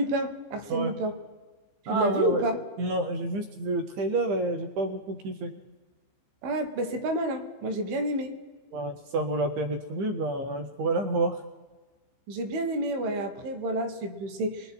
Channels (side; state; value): left; late; 15 ms